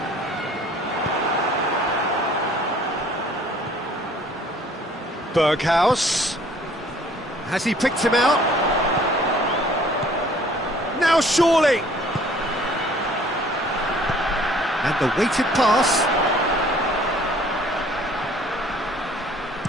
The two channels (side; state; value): both; normal; correlation 0.55